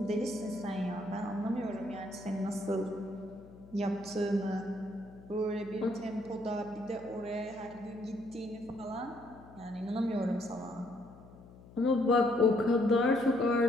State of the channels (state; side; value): noise; left; hum, 20 dB below the sound